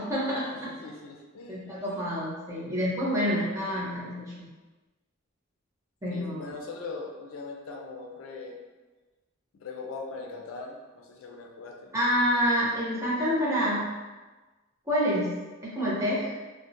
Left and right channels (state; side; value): normal; both; correlation 0.20